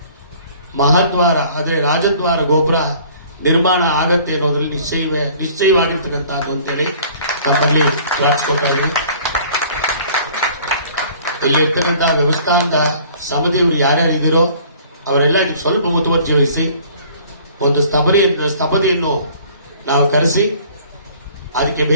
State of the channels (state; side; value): inverted; both; correlation -0.52